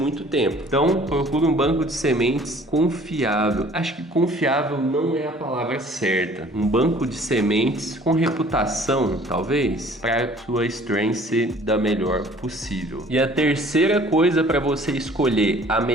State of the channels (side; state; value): both; normal; correlation 0.53